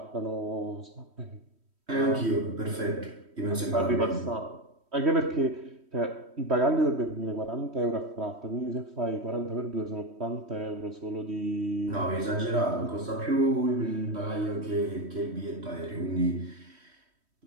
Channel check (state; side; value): late; left; 3.1 ms